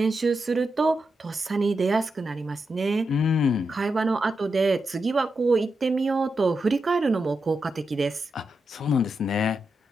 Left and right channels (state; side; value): normal; both; correlation 0.86